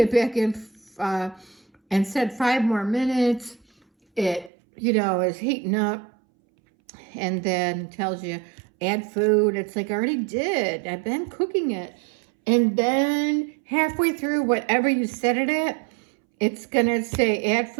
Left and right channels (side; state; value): left; drops out; at 4.5 s